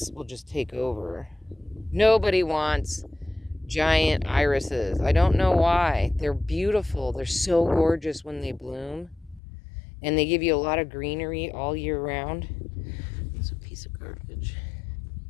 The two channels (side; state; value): right; drops out; at 9.4 s